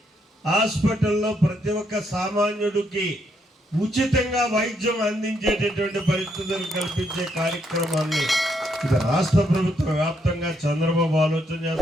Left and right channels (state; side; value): normal; both; correlation 0.75